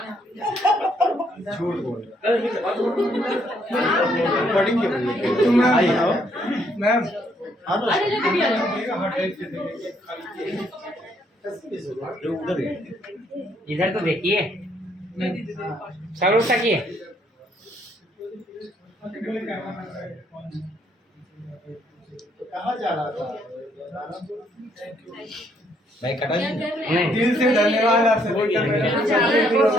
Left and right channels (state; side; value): normal; both; correlation 0.70